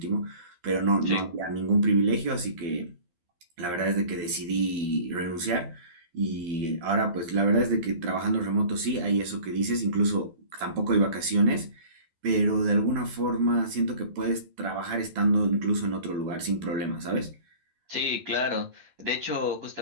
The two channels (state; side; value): late; left; 12 ms